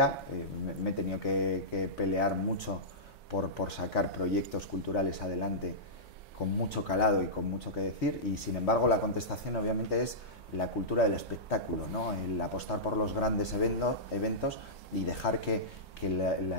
me he tenido que pelear mucho por sacar proyectos culturales adelante con mucho calado y con mucho que decir, y sin embargo la contestación obviamente es la cultura del espectáculo, ¿no? El apostar por los grandes eventos y dejar que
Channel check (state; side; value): normal; both; correlation -0.15